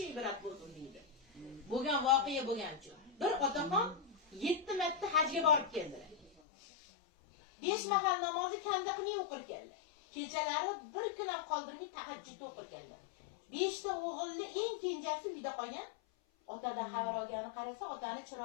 ibrat bo'lsin deydi? Bo'lgan voqea bo'lgancha. Bir otaxon 7 marta hajga borib keldilar. 5 mahal namozni kanda qilmay o'qir keldi. Kechalari bir kun ham qoldirmay tahajjud o'qir keldi. 5 ta o'g'ilni eng kenjasi uyda qolgan. Otadan xabar olgani qarasa, otani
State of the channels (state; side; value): drops out; right; at 6.3 s